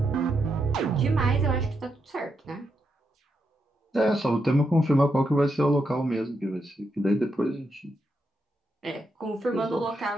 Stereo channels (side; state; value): both; normal; correlation 0.83